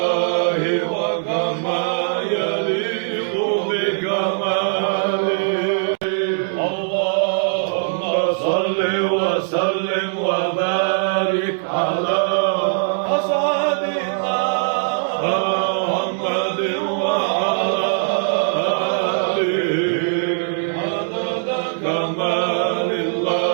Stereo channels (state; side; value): silent; left; 65 dB below the other